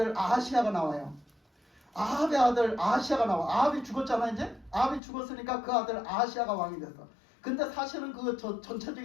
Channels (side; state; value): right; drops out; at 5.0 s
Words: 아하시야가 나와요. 아합의 아들 아하시야가 나와. 아합이 죽었잖아 이제. 아합이 죽었으니까 그 아들 아하시야가 왕이 됐어. 근데 사실은 그